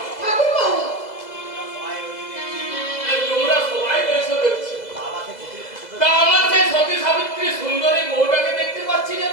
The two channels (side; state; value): right; late; 2.0 ms